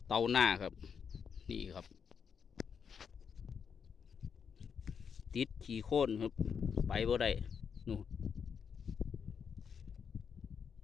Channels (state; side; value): quieter; right; 6.8 dB